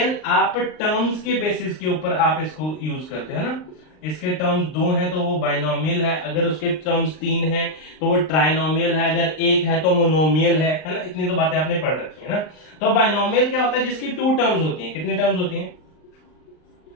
आप टर्म्स के बेसिस के ऊपर आप इसको यूज करते हैं ना। इसके टर्म्स 2 हैं तो वो बाइनोमियल है, अगर उसके टर्म्स 3 हैं तो वो ट्राइनोमियल है, अगर 1 है तो मोनोमियल है ना? इतनी तो बातें आपने पढ़ रखी है ना। तो बाइनोमियल क्या होता है? जिसकी 2 टर्म्स होती हैं। कितनी टर्म्स होती हैं?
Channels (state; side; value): late; right; 39 ms